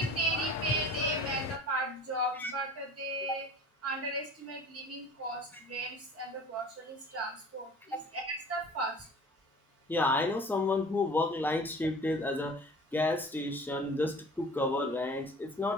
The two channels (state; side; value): normal; both; correlation 0.43